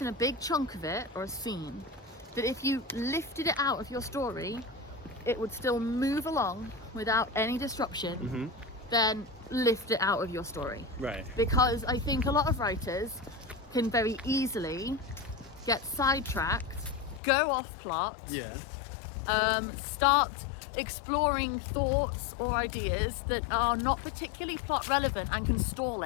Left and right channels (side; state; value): right; drops out; at 17.2 s